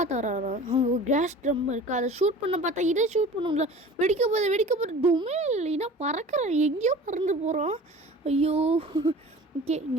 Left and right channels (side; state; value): both; normal; correlation 0.41